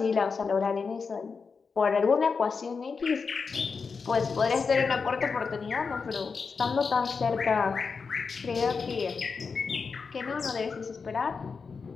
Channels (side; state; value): right; quieter; 5.1 dB